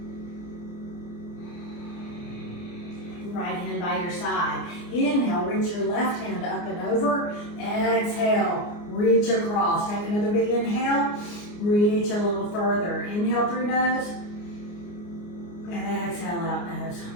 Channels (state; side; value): late; right; 29 ms